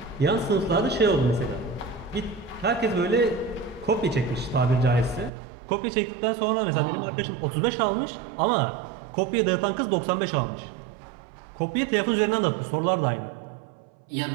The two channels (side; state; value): left; drops out; at 5.3 s